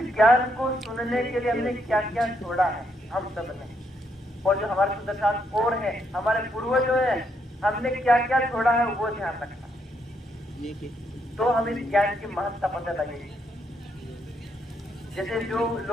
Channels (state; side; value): normal; both; correlation 0.76